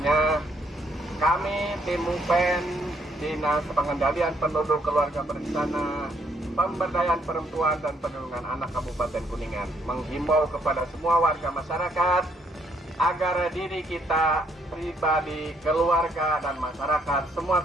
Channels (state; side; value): normal; both; correlation 0.70